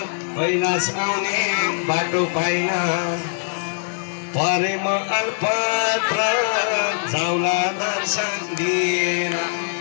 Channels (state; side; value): silent; right; digital silence